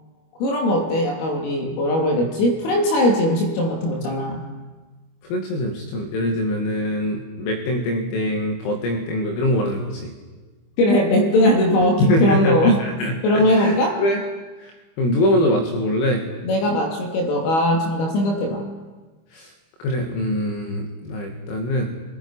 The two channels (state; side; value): late; right; 25 ms